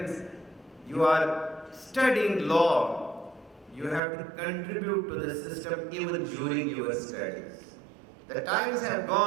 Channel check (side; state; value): left; drops out; at 4.0 s